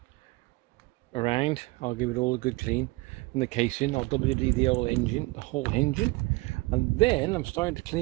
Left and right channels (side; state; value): left; quieter; 23.0 dB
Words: around. I'll give it all a good clean in the casing. I'll WD the old engine, the whole engine, and then I'm starting to